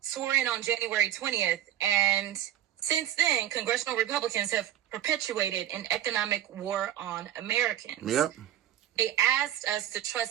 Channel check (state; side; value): quieter; left; 11.9 dB